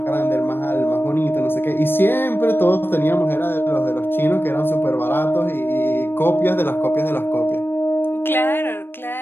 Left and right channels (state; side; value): late; right; 0.10 ms